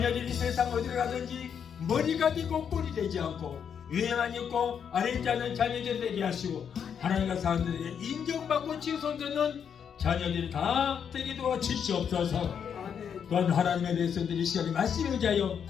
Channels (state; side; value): quieter; right; 7.7 dB